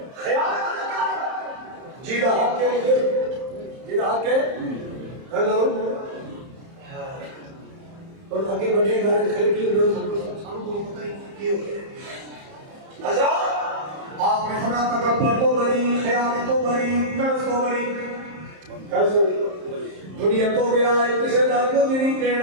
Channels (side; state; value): left; late; 30 ms